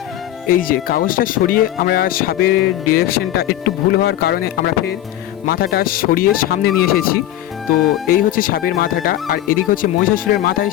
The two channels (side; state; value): right; quieter; 13.1 dB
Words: এই যে কাগজটা সরিয়ে আমরা সাপের ডিরেকশনটা একটু ভুল হওয়ার কারণে আমরা ফের মাথাটা সরিয়ে সামনে নিয়ে এসেছি। তো এই হচ্ছে সাপের মাথাটা, আর এদিকে হচ্ছে মহিষাসুরের মাথায়